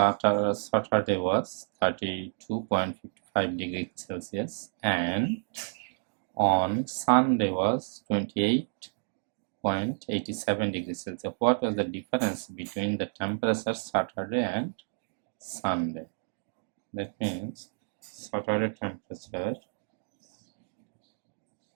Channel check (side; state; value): left; silent; digital silence